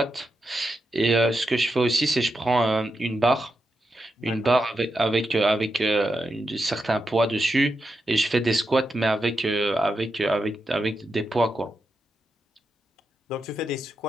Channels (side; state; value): both; normal; correlation 0.86